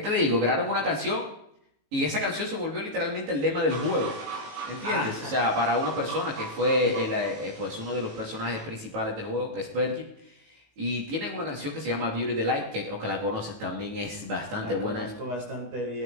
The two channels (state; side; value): late; left; 18 ms